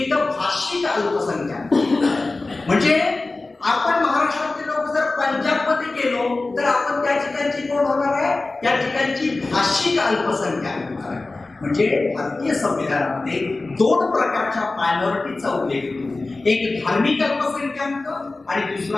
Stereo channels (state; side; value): quieter; right; 3.3 dB